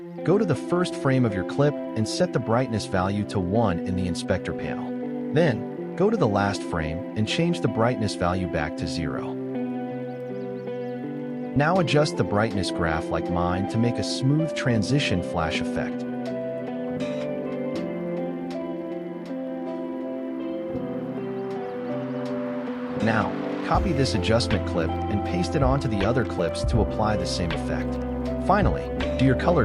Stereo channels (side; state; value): both; identical; correlation 1.00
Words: Go to the first frame of your clip and set the brightness value to 1 in the inspector panel. Then, go to the last frame and change the brightness value back to 0. Now adjust the brightness graph like mine to make a smooth transition flash effect. Now, copy this adjustment clip and paste it onto the other clips to apply the same effect. Finally, do your color